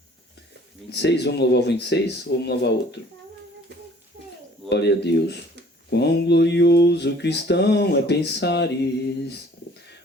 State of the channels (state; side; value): normal; both; correlation 0.54